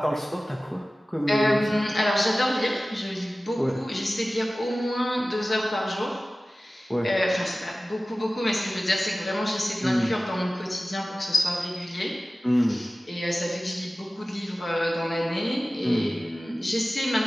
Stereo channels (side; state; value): both; normal; correlation 0.96